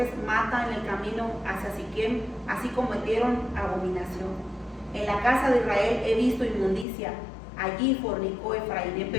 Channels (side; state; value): right; drops out; at 6.9 s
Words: mata en el camino hacia Siquem, así cometieron abominación. En la casa de Israel he visto inmundicia, allí fornicó Efraín.